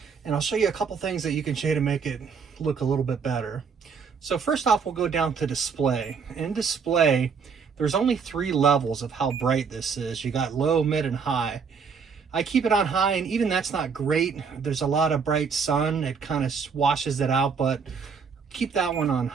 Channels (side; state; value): left; quieter; 5.9 dB